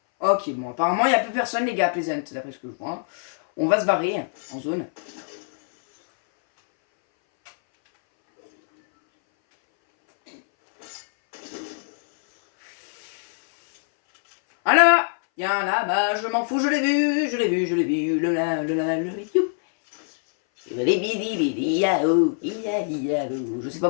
Ok, bon, apparemment, il n'y a plus personne, les gars, Pleasant, d'après ce que je vois. On va se barrer en zone. Ah là, il y a un là-bas, je m'en fous, je l'ai vu, je l'ai vu, je l'ai vu, le you. Je sais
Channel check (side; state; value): right; silent; 60 dB below the other